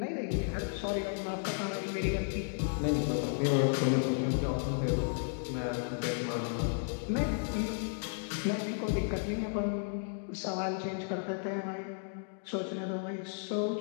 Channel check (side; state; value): right; silent; digital silence